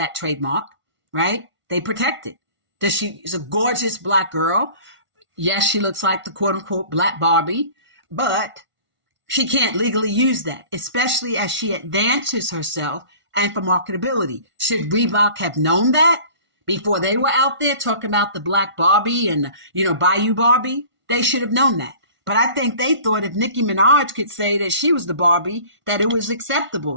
trademark, right? They protect it. She's a gorgeous black girl. Yes, she looks like the quote unquote black Barbie, but she can't legally use that, especially as she advances herself and for marketability. Should Reebok have known that before they were out there talking about the black Barbie and, Bayou Barbie? They should have known that. But I think they thought if Nicki Minaj could say that she was the Barbie, that it was acceptable.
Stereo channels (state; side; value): late; left; 1.5 ms